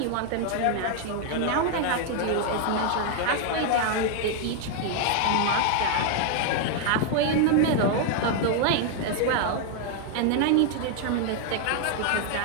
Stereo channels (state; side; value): different; both; correlation 0.00